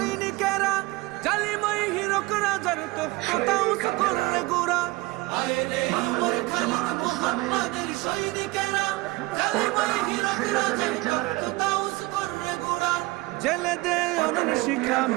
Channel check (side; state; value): left; quieter; 21.9 dB